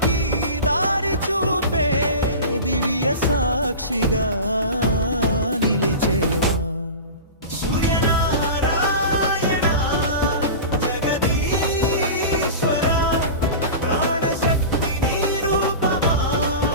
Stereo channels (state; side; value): inverted; both; correlation -0.31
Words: దారి చూపే దివ్య సాక్షిగా నిలిచేవా